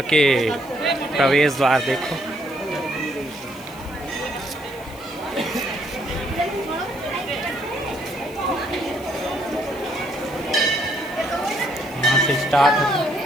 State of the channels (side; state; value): left; noise; hiss, 21 dB below the sound